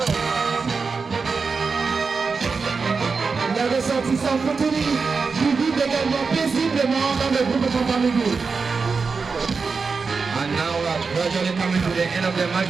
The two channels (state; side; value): quieter; left; 4.8 dB